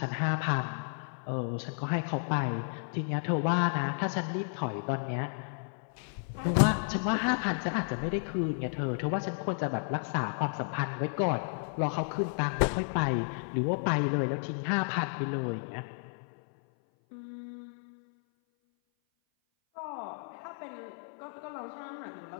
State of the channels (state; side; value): silent; right; 56 dB below the other